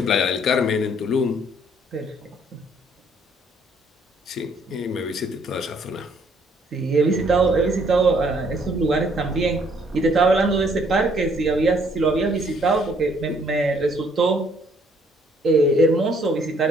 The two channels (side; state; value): both; normal; correlation 0.65